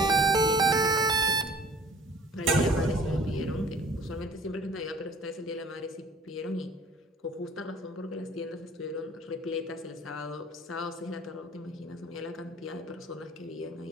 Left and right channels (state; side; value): normal; both; correlation 0.50